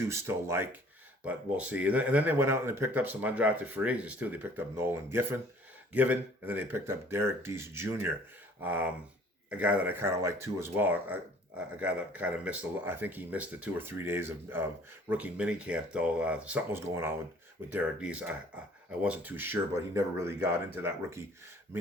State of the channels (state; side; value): normal; both; correlation 0.54